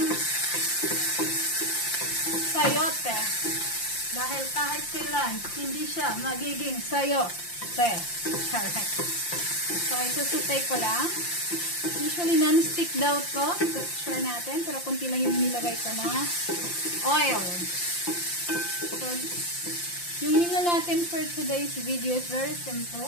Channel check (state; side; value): late; right; 5.8 ms